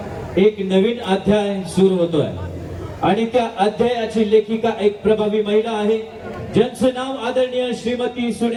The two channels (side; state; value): both; identical; correlation 1.00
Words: एक नवीन अध्याय सुरू होतोय आणि त्या अध्यायाची लेखिका एक प्रभावी महिला आहे, ज्यांचं नाव आदरणीय श्रीमती